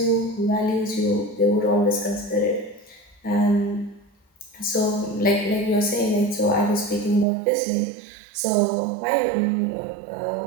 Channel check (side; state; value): left; drops out; at 7.2 s